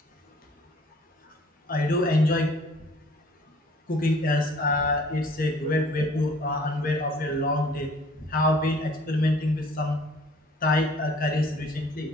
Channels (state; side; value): normal; both; correlation 0.54